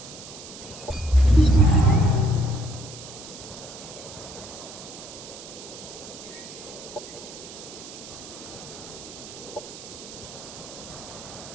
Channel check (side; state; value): right; noise; hiss, 14 dB below the sound